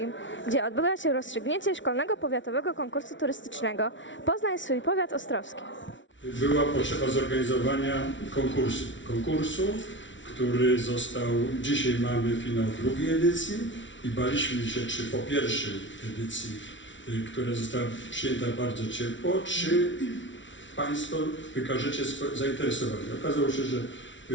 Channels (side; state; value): right; late; 0.55 ms